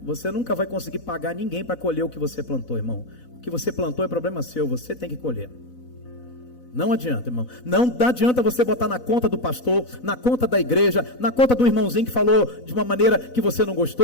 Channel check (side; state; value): right; late; 4.0 ms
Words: Você nunca vai conseguir pagar ninguém para colher o que você plantou, irmão. O que você plantou é problema seu, você tem que colher. Não adianta, irmão. Não adianta você botar na conta do pastor, na conta da igreja, na conta do irmãozinho que falou de uma maneira que você não